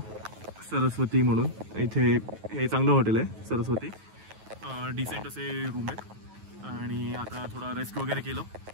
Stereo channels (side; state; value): left; late; 9.3 ms